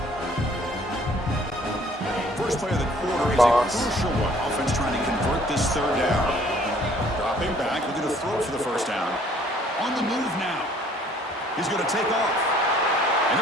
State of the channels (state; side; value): normal; both; correlation 0.58